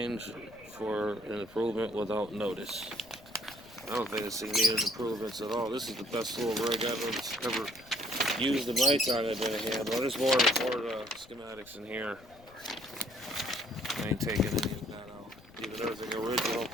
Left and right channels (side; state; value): left; noise; rumble, 25 dB below the sound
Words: for an improvement without notice. I don't think this thing needed improvements at all. This is the best little rig I've ever used in my time I've been a handler. There's more schematics in here. I ain't taking any of that out. Even everything original.